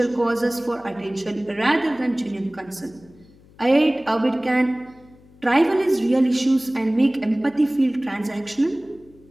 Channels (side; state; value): left; noise; hum, 26 dB below the sound